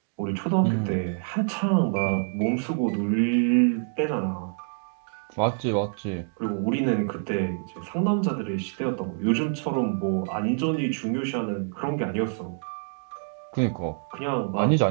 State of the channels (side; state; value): left; silent; 60 dB below the other